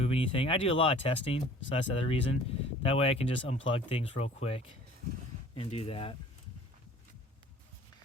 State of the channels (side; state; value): both; normal; correlation 0.49